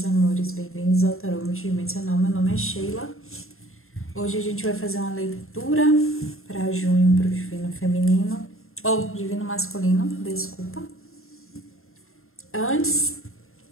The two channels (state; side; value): late; right; 0.61 ms